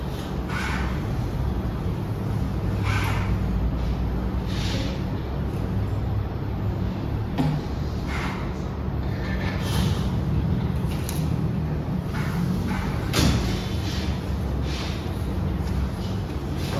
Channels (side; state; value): both; identical; correlation 1.00